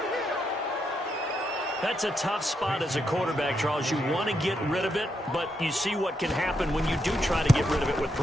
That's a tough spot as a quarterback, Charles. You want to get rid of it, but you see what can happen when you do try to get rid of it with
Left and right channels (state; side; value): normal; both; correlation 0.81